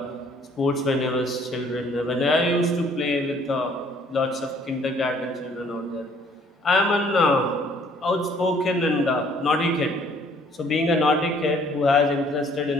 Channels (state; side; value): normal; both; correlation 0.60